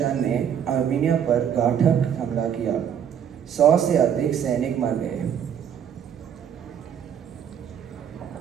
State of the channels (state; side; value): quieter; left; 8.6 dB